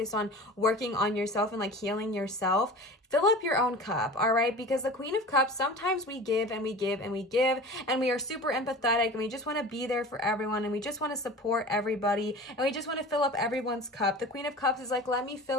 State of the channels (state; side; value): normal; both; correlation 0.36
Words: on working on yourself and like healing yourself. fill up your own cup, all right? Because the Queen of Cups, sometimes we give and we give and we give, and we are super empathetic, and we just want to be there for everyone, and we just want to support everybody, and we just want to fill up everyone's cup. The Queen of Cups is like, let me